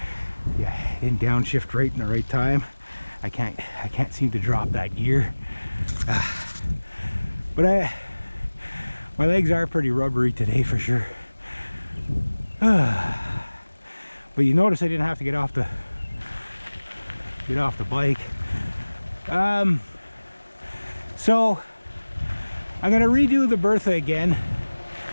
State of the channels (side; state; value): both; inverted; correlation -1.00